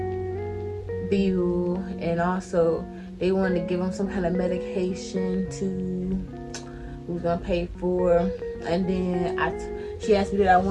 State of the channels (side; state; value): both; identical; correlation 1.00